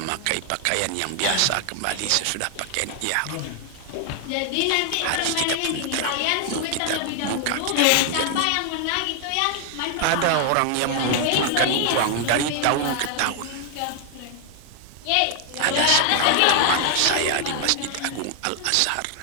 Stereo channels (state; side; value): different; both; correlation 0.00